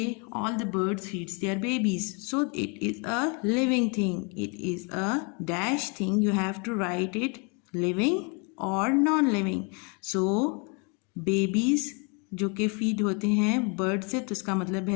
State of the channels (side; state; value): right; quieter; 34.0 dB